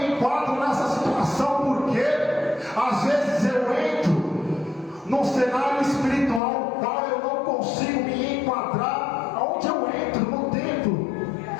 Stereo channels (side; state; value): right; drops out; at 6.4 s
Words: enquadro nessa situação, porque às vezes eu entro num cenário espiritual qual eu não consigo me enquadrar aonde eu entro no templo.